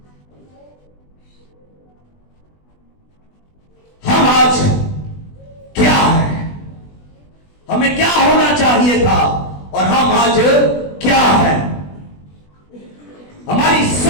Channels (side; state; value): right; late; 20 ms